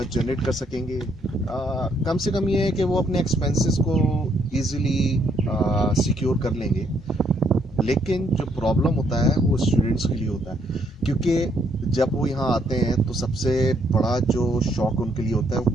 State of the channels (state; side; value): normal; both; correlation 0.71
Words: कर सकेंगे। कम से कम ये है कि वो अपने एक्सपेंसेस को इजीली सिक्योर कर लेंगे। लेकिन जो प्रॉब्लम होता है वो स्टूडेंट्स के लिए होता है, क्योंकि जब वो यहाँ आते हैं तो सबसे बड़ा जो शौक उनके लिए होता है वो